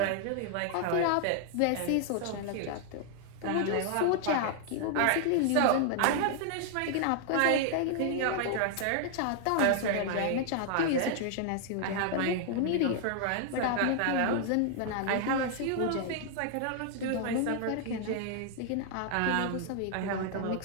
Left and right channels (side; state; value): both; different; correlation 0.00